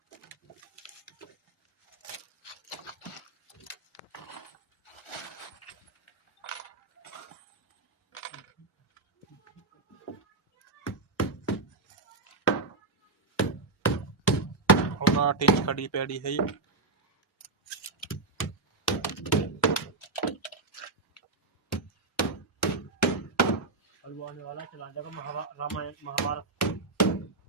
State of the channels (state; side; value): quieter; left; 3.6 dB